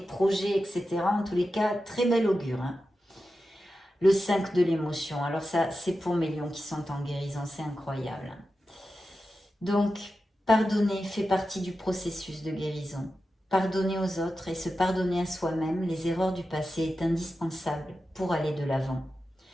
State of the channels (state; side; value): normal; both; correlation 0.91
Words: projets, etc. En tous les cas, très bel augure, hein. Le 5 de l'émotion. Alors ça, c'est pour mes lions qui sont en guérison. C'est incroyable. Donc, pardonner fait partie du processus de guérison. Pardonner aux autres et se pardonner à soi-même les erreurs du passé est indispensable pour aller de l'avant.